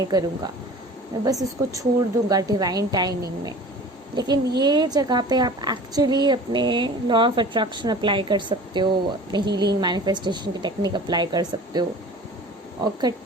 करूँगा, मैं बस उसको छोड़ दूँगा डिवाइन टाइमिंग में। लेकिन ये जगह पे आप एक्चुअली अपने लॉ ऑफ अट्रैक्शन अप्लाई कर सकते हो, अपने हीलिंग मैनिफेस्टेशन की टेक्निक अप्लाई कर सकते हो, और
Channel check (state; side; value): normal; both; correlation 0.42